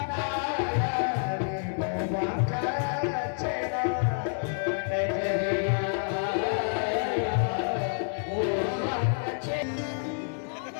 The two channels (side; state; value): right; silent; 59 dB below the other